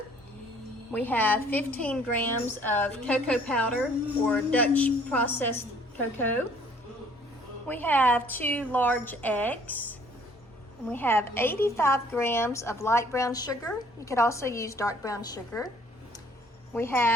We have 15 grams of cocoa powder or Dutch processed cocoa. We have 2 large eggs. And we have 85 grams of light brown sugar. You could also use dark brown sugar. We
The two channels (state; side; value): normal; both; correlation 0.58